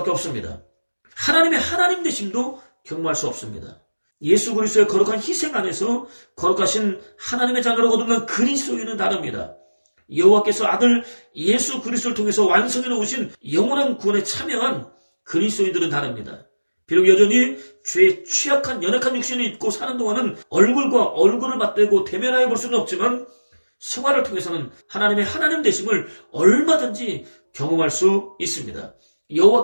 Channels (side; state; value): both; inverted; correlation -1.00